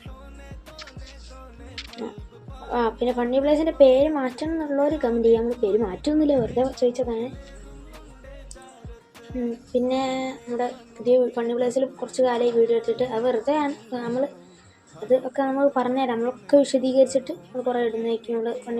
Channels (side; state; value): both; identical; correlation 1.00